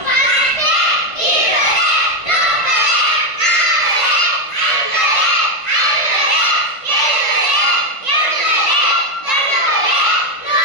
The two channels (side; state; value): right; late; 1.5 ms